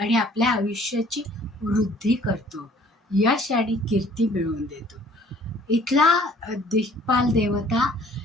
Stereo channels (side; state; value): both; normal; correlation 0.56